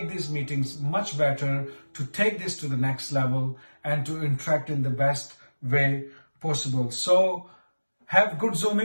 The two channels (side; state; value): both; inverted; correlation -1.00